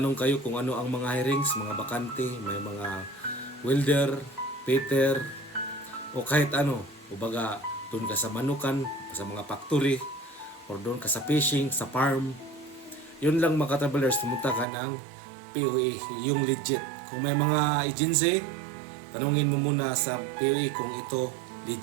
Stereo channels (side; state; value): left; drops out; at 14.7 s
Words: kayo kung ano ang mga hirings, mga bakante, may mga welder, fitter, o kahit ano. Ubaga, doon ka sa manukan, sa mga factory, or doon ka sa fishing, sa farm. Yun lang mga katravelers, pumunta ka ng PUE, yung legit. Kung may mga agency, tanungin mo muna sa PUE kung ito